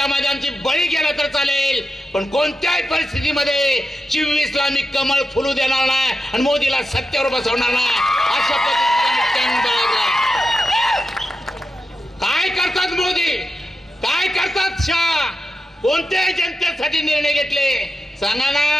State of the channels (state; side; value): normal; both; correlation 0.89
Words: आमची बळी गेला तर चालेल, पण कोणत्याही परिस्थितीमध्ये 24ला मी कमळ फुलू देणार नाही आणि मोदीला सत्तेवर बसवणार नाही. अशा पद्धतीने काय करतात मोदी, काय करतात शाह, कोणत्याही जनतेसाठी निर्णय घेतले सांगा